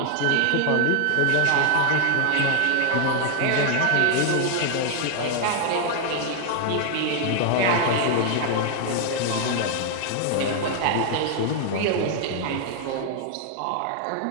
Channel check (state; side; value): different; both; correlation 0.00